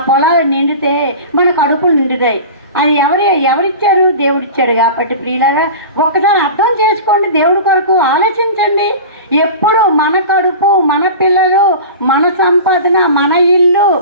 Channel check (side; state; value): both; inverted; correlation -0.34